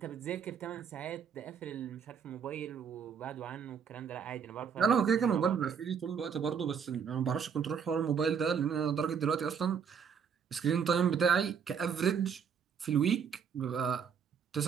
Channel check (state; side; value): quieter; left; 7.0 dB